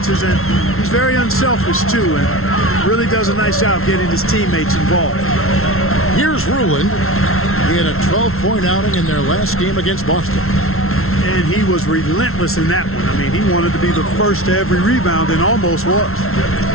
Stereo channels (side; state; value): right; late; 0.62 ms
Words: and he's very unselfish too, and really does a nice job getting his teammates involved. Here's Rulin. He had a 12-point outing in their last game against Boston. And he was relentless in that one. I mean, he wanted to be the first to every rebound and almost was.